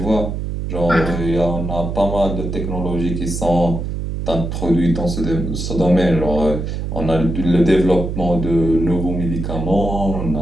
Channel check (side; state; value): right; noise; hum, 4 dB below the sound